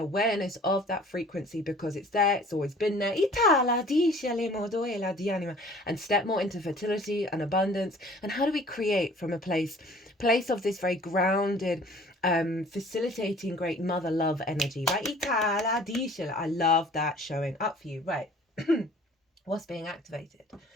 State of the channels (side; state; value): both; normal; correlation 0.50